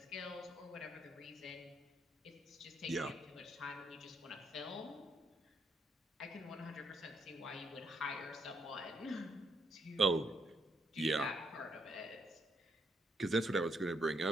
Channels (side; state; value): both; normal; correlation 0.75